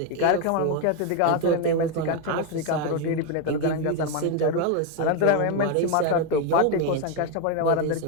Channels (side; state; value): both; different; correlation 0.02